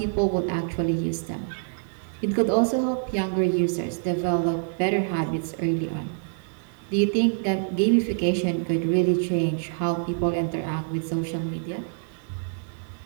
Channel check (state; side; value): silent; left; 60 dB below the other